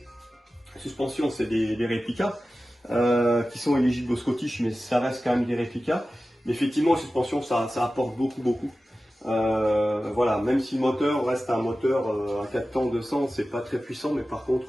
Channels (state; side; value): normal; both; correlation 0.95